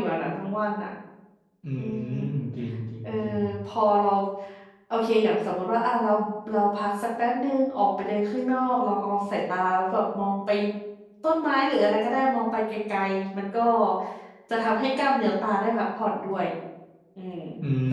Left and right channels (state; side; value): identical; both; correlation 1.00